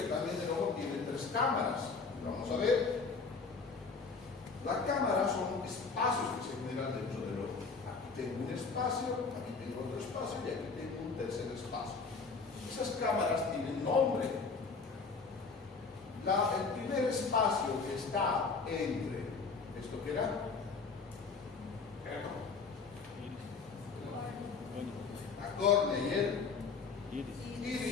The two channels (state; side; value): quieter; right; 4.7 dB